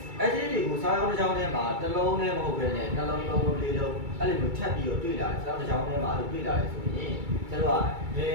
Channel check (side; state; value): left; late; 2.3 ms